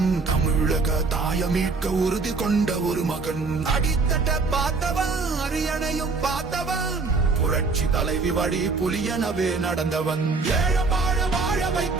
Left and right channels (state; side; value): quieter; left; 4.1 dB